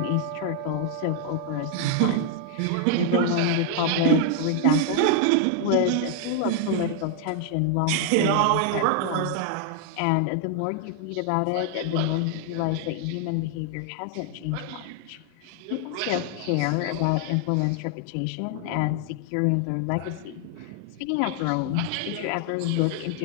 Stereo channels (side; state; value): both; different; correlation 0.00